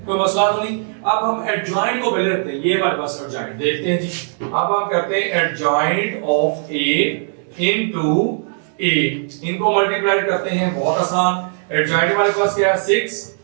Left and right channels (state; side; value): silent; left; digital silence